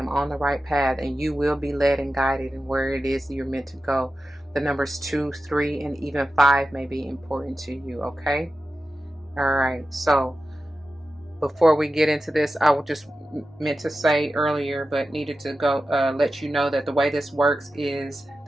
on the right path, and you will be led and guided in where it is you're meant to go. The numbers 2, 3, and even 5 may be important to you. Okay. All right. So before we get into this, I will just meant to say earlier, but needed to go let you know that the way this works is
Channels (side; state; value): both; normal; correlation 0.93